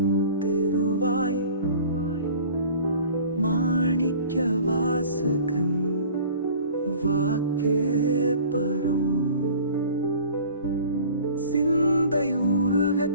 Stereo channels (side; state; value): both; inverted; correlation -0.45